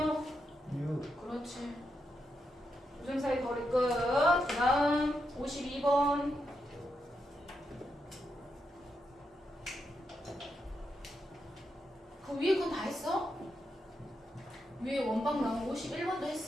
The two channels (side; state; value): both; normal; correlation 0.84